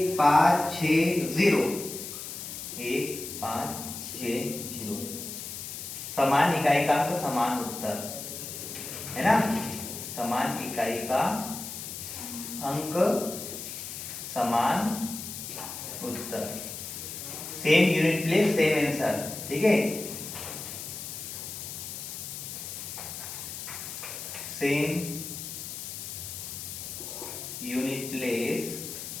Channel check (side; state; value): left; noise; hiss, 8 dB below the sound